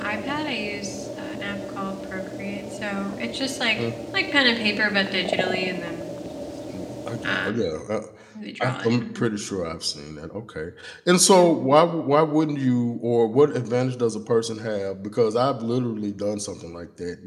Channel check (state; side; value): identical; both; correlation 1.00